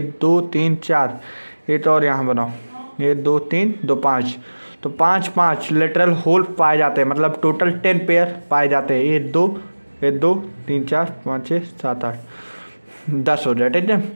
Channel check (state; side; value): inverted; both; correlation -1.00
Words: 2 3 4, ये तो और यहाँ बनाओ, 1 2 3 2 5, तो 5 लेटरल होल पाए जाते हैं, मतलब टोटल 10 पेयर पाए जाते हैं। 1 2 3 4 5 6 7 8 10 हो जाए, ठीक है।